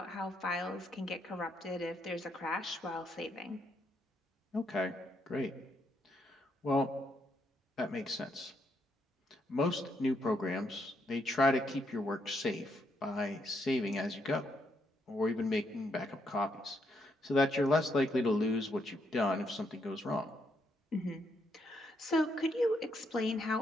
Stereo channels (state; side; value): normal; both; correlation 0.76